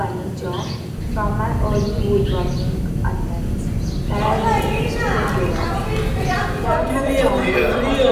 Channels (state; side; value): identical; both; correlation 1.00